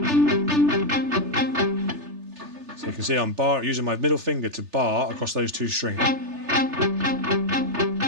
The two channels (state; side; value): late; left; 3.3 ms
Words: So you can see I'm using my middle finger to bar across those two strings. And